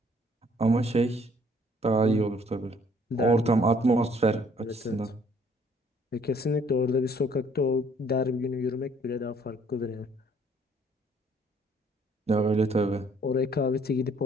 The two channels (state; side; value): normal; both; correlation 0.61